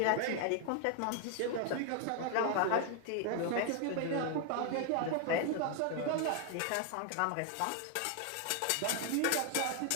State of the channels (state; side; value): different; both; correlation 0.00